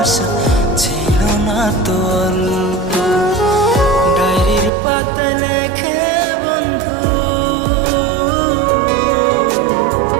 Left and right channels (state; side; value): drops out; left; at 4.7 s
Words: ছিল না তো অল্প। ডায়েরির পাতায় লেখে বন্ধু,